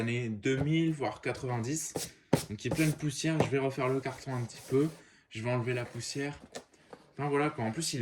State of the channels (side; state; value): both; identical; correlation 1.00